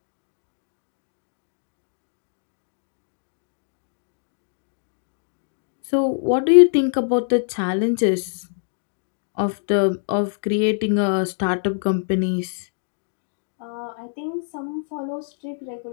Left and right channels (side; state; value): right; silent; digital silence